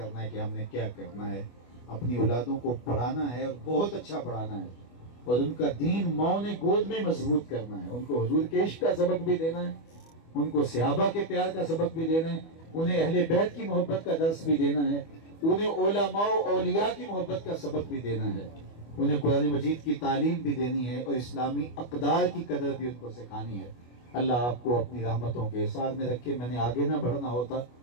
ہے کہ ہم نے کیا کرنا ہے. اپنی اولادوں کو پڑھانا ہے اور بہت اچھا پڑھانا ہے, اور ان کا دین ماؤں نے گود میں مضبوط کرنا ہے. ان کو حضور کے عشق کا سبق بھی دینا ہے, ان کو صحابہ کے پیار کا سبق بھی دینا ہے, انہیں اہل بیت کی محبت کا درس بھی دینا ہے, انہیں علماء و اولیاء کی محبت کا سبق بھی دینا ہے, انہیں قرآن مجید کی تعلیم بھی دینی ہے, اور اسلامی اقدار کی قدر بھی ان کو سکھانی ہے. اللہ آپ کو اپنی رحمتوں کے احسار میں رکھے. میں نے آگے نہ بڑھنا ہوتا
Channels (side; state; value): right; late; 25 ms